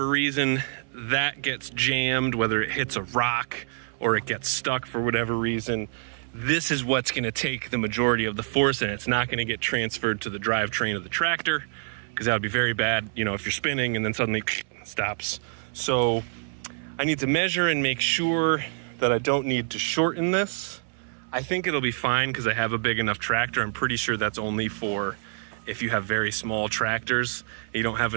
reason that gets jammed, whether it hits a rock or it gets stuck for whatever reason, this is what's going to take the majority of the force, and it's not going to get transferred to the drivetrain of the tractor, because that would be very bad, if you're spinning and then suddenly stops. So I need to measure and make sure that I don't need to shorten this. I think it'll be fine because I have a big enough tractor. I'm pretty sure that's only for if you have very small tractors. You don't have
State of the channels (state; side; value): silent; left; 61 dB below the other